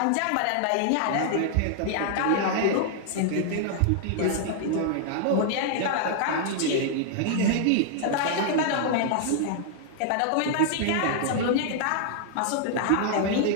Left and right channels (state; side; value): different; both; correlation -0.01